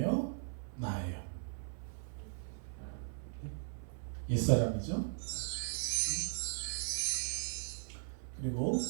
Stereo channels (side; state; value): left; silent; 52 dB below the other